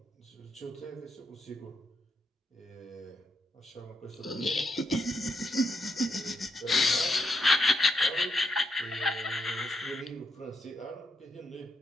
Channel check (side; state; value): both; normal; correlation 0.80